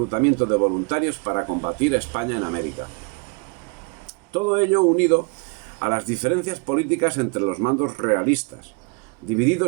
de voluntarios para combatir a España en América. Todo ello unido a las diferencias políticas entre los mandos realistas,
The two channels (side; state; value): left; quieter; 33.2 dB